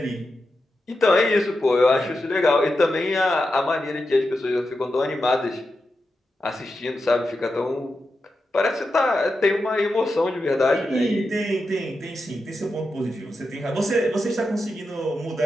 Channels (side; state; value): both; normal; correlation 0.89